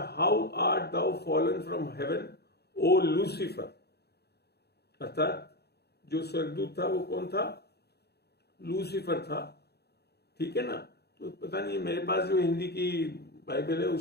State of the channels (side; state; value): right; late; 0.47 ms